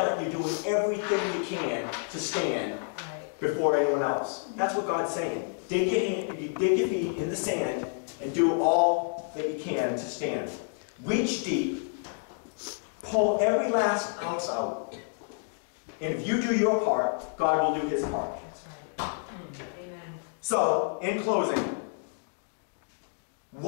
everything you can to stand before anyone else. That's what God's saying. Dig your feet in the sand and do all that you can to stand. Reach deep. Pull every last ounce out. And if you do your part, God will do his part. That's right. Amen. So, in closing,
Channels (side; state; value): right; silent; 58 dB below the other